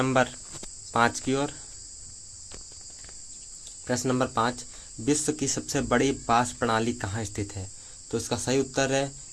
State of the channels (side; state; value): both; identical; correlation 1.00